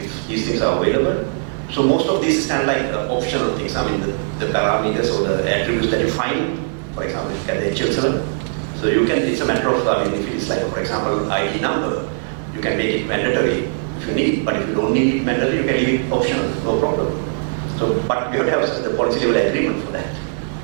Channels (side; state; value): left; silent; 57 dB below the other